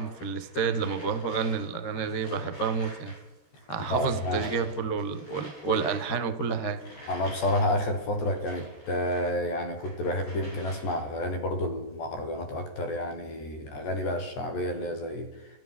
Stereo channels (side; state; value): right; late; 14 ms